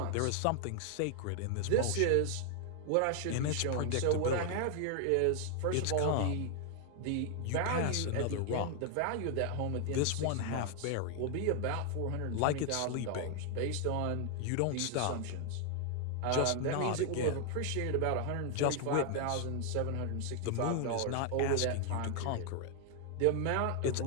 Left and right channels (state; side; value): different; both; correlation 0.00